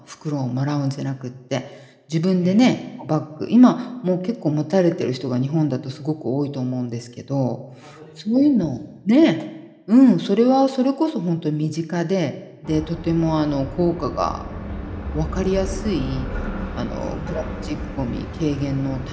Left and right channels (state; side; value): identical; both; correlation 1.00